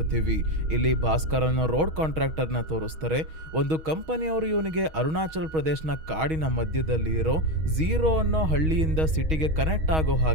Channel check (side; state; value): left; late; 6.3 ms